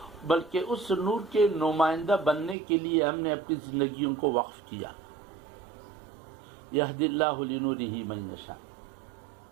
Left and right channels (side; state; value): left; drops out; at 2.6 s